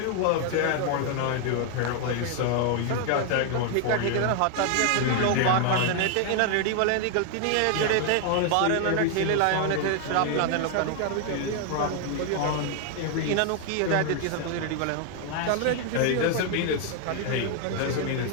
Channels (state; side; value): different; both; correlation 0.00